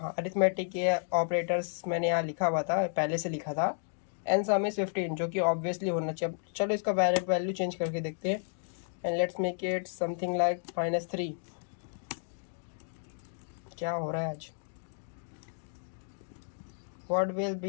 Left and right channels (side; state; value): right; silent; digital silence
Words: अरिथमेटिक के ऑपरेटर्स मैंने यहाँ लिखा हुआ था, पहले से लिखा था. एंड सम इज 15 जो कि ऑब्वियसली होना चाहिए. चलो इसका वैल्यू चेंज करके देखते हैं. And let's make it something like -3. क्या हो रहा है आज, व्हाट विल